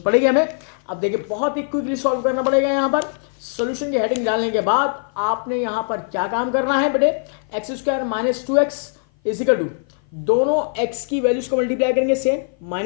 पड़ेगी हमें। अब देखिए बहुत ही क्विकली सॉल्व करना पड़ेगा। यहाँ पर सॉल्यूशन की हेडिंग डालने के बाद आपने यहाँ पर क्या काम करना है बेटे, x square minus 2x is equal to दोनों x की वैल्यूज को मल्टीप्लाई करेंगे सेम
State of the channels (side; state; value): right; silent; 56 dB below the other